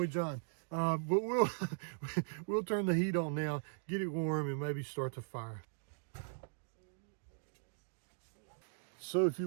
John? But we'll turn the heat on now, get it warm, and maybe start the fire. So if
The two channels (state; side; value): silent; left; digital silence